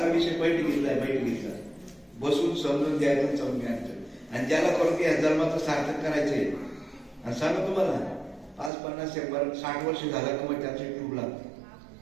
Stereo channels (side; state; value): left; drops out; at 8.7 s